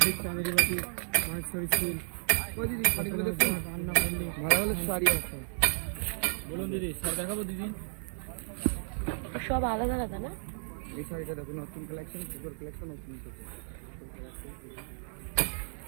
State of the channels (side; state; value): left; silent; digital silence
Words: চাঁদেরি বাটি, মাহেশ্বরী সিল। দিদি শাড়িগুলো দেখুন, রান্না করলে ভালো ভালো শাড়ি আছে। বলুন দিদি, শাড়ি দেখাবো দিদি? সব আলাদা আলাদা না? এই শাড়িটা দেখুন, নতুন কালেকশন, সুপার কালেকশন নতুন।